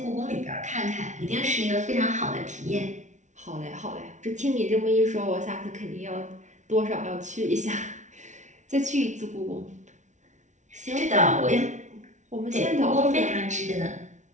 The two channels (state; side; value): late; left; 0.35 ms